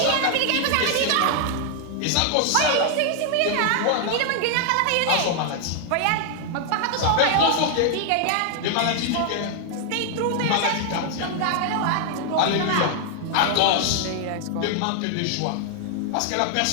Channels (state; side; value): different; both; correlation 0.00